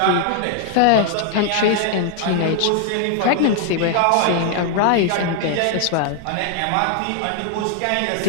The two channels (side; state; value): both; different; correlation 0.00